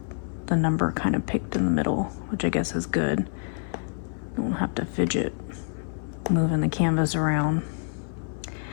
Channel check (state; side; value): silent; right; 57 dB below the other